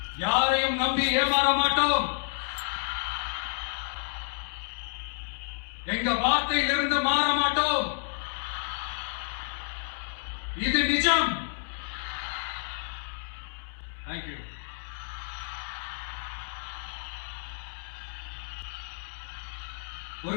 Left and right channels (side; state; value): right; silent; digital silence